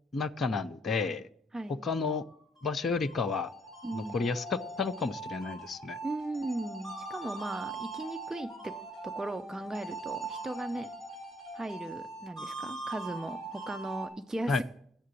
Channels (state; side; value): normal; both; correlation 0.65